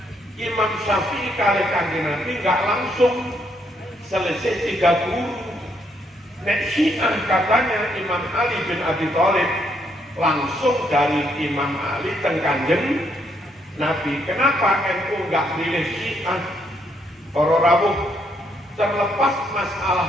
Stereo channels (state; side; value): normal; both; correlation 0.73